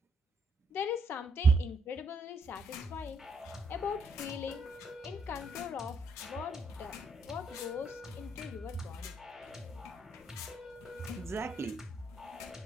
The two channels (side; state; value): both; normal; correlation 0.74